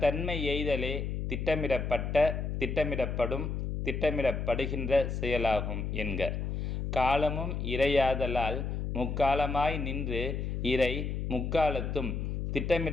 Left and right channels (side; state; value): left; noise; hum, 2 dB below the sound